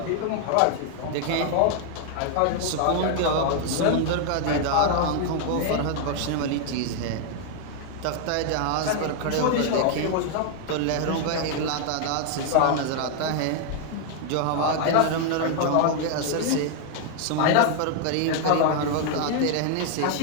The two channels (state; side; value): different; both; correlation 0.00